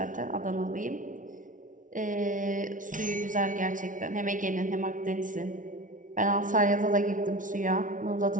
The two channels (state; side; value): late; left; 0.38 ms